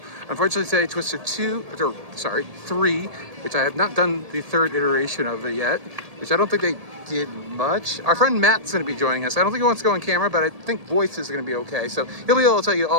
Unfortunately today, Twister 3, which I have not done the third iteration of it yet, which I don't think they did much. Our friend Matt's going to be joining us. I don't think he wants to go on camera, but I think voice is going to be okay. So he'll be able to tell you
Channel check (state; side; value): late; left; 1.8 ms